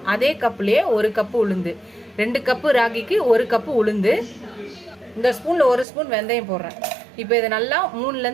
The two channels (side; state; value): left; drops out; at 5.9 s